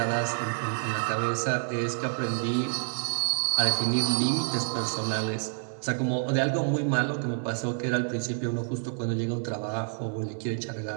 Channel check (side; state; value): left; silent; 59 dB below the other